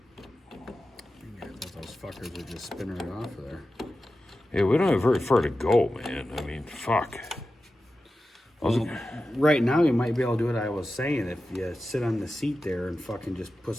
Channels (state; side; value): normal; both; correlation 0.93